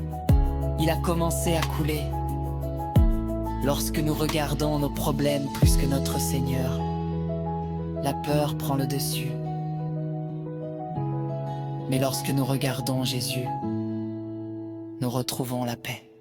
il a commencé à couler. Lorsque nous regardons nos problèmes plus que notre Seigneur, la peur prend le dessus. Mais lorsque nous regardons Jésus, nous retrouvons la paix.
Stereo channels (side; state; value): both; identical; correlation 1.00